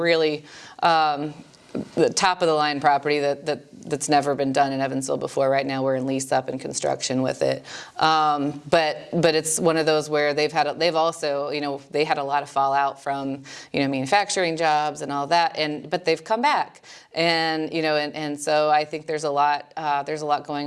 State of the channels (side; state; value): both; identical; correlation 1.00